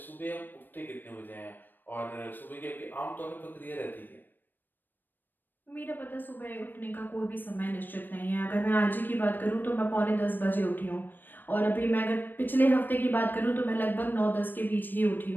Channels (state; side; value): late; right; 0.092 ms